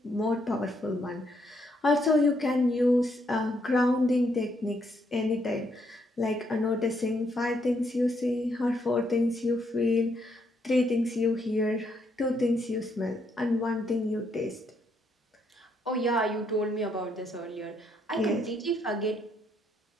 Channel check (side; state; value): both; normal; correlation 0.74